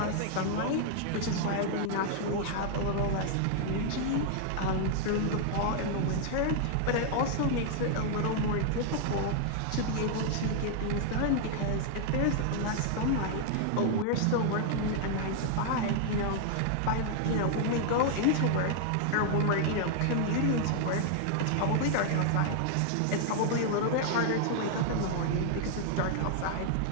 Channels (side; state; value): both; different; correlation 0.00